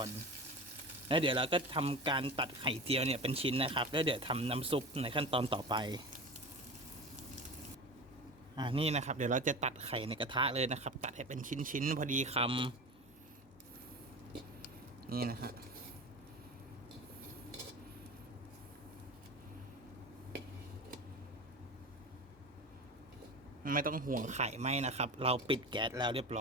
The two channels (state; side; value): normal; both; correlation 0.30